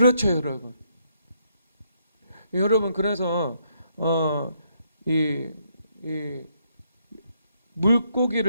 여러분. 여러분, 그래서 이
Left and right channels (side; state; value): both; inverted; correlation -0.74